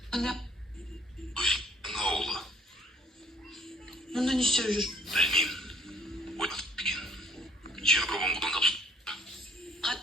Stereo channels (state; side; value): normal; both; correlation 0.61